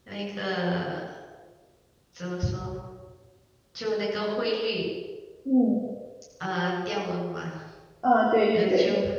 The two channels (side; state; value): both; identical; correlation 1.00